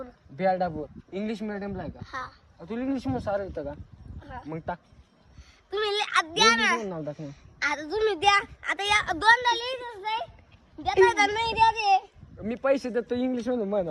बिहारडापूर इंग्लिश मिडियमला आहे का? हा तुला इंग्लिश मध्ये सारं येतं का? हा मग टाक तुम्ही द्या ना इंग्लिश नाव टाक ना. आता तुम्ही द्या आता या दोनदा लिहितच नाही देता का नाही द्या ते मी पैसे देतो इंग्लिश मध्ये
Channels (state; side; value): identical; both; correlation 1.00